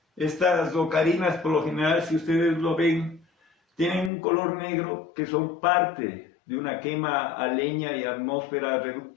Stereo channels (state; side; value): drops out; right; at 4.1 s